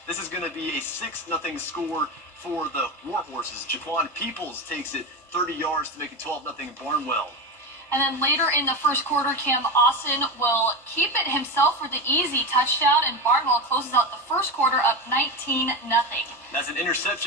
This is going to be a 6-0 score for the Warhorses. Jaquan Peoples takes it 30 yards to make it 12-0 Barnwell. And then later in the first quarter, Cam Austin will keep it himself for the easy touchdown, and Barnwell closes out the first quarter up 19-0. That's an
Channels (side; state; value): both; normal; correlation 0.20